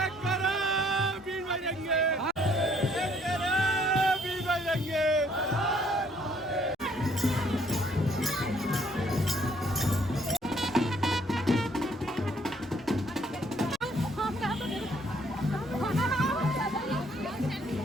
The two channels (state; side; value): normal; both; correlation 0.64